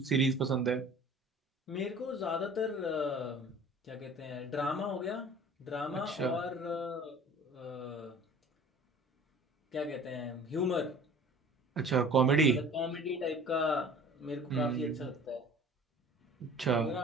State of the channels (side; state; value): both; normal; correlation 0.46